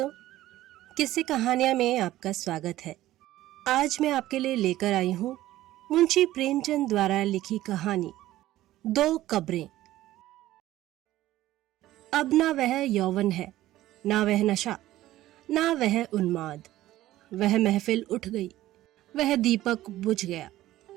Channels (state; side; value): quieter; left; 15.1 dB